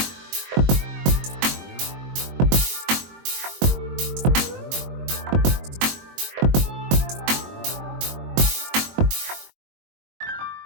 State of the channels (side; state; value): left; late; 22 ms